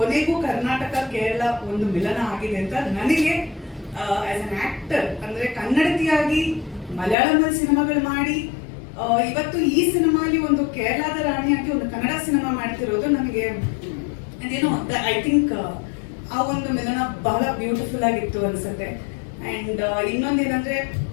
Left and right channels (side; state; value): right; drops out; at 7.2 s